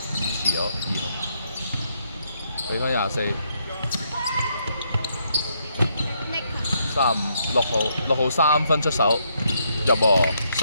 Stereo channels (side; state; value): both; inverted; correlation -0.75